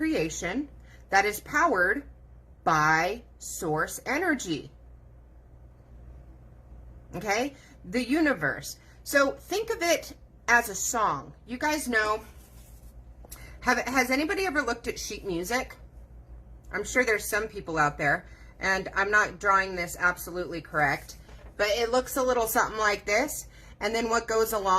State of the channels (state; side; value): identical; both; correlation 1.00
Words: that is powered by source energy. Okay? The universe. So think of it as a song. You guys know, has anybody ever looked at sheet music? I'm sure there's some people out there, and I'm not drawing this absolutely correct, but it looks a little something like this. And then what goes